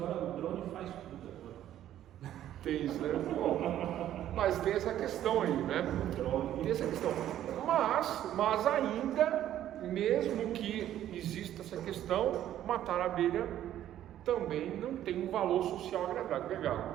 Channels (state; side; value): quieter; left; 11.9 dB